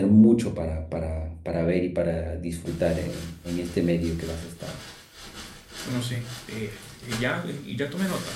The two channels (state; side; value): identical; both; correlation 1.00